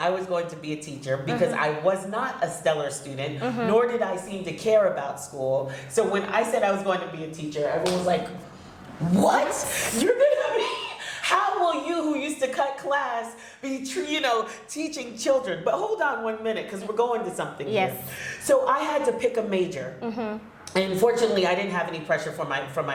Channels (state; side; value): identical; both; correlation 1.00